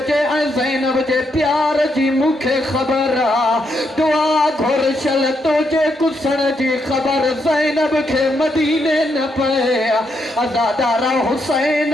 ऐं ज़ैनब जे प्यार जी मूंखे ख़बर आहे। दुआ घुरशल तुंहिंजे कुसण जी ख़बर ज़ैनब खे मदीने न पए। अज़ादारा हुसैन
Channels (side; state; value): both; normal; correlation 0.79